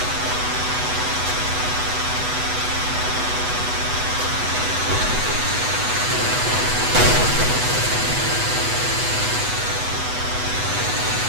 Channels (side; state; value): left; late; 8.1 ms